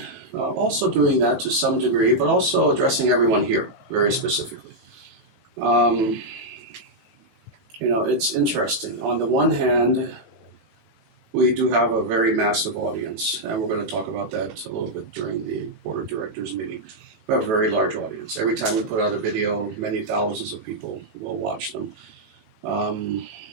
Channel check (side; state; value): left; late; 18 ms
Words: also doing that to some degree, but also addressing everyone here very specifically. You know, it's interesting. On the one hand, we do have a very massive audience, and we're going to talk about that a little bit during the board of directors meeting. We have a very large audience. Every time we put out a video, many thousands of people will watch them.